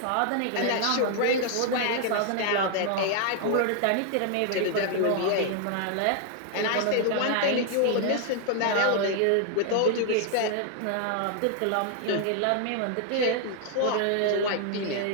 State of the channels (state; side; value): different; both; correlation 0.00